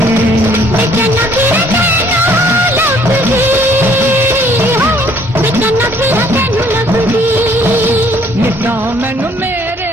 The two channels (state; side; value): normal; both; correlation 0.60